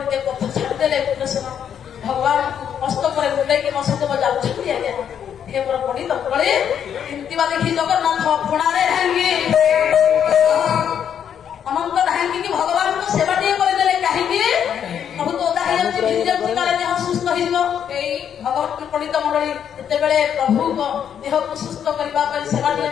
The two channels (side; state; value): right; quieter; 8.7 dB